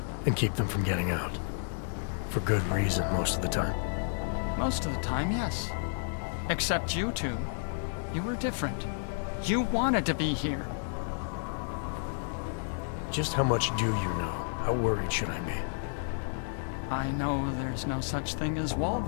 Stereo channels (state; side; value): silent; right; digital silence